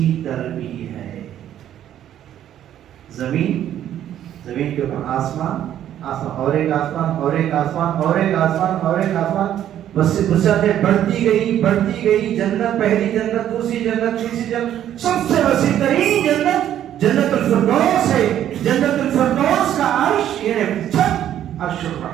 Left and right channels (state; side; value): quieter; left; 11.1 dB